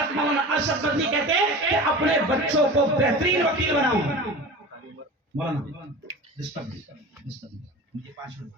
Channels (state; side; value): normal; both; correlation 0.34